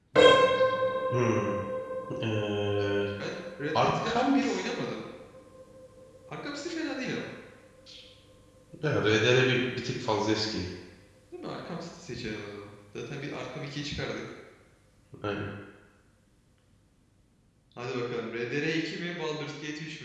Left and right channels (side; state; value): both; identical; correlation 1.00